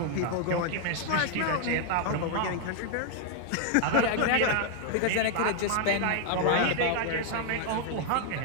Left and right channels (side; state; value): both; different; correlation 0.00